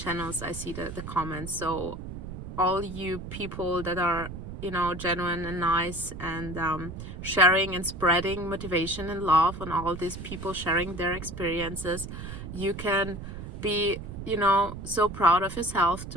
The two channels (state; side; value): noise; right; rumble, 9 dB below the sound